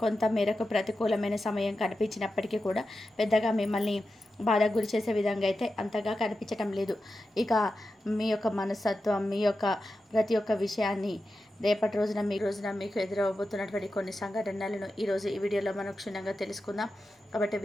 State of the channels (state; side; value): normal; both; correlation 0.91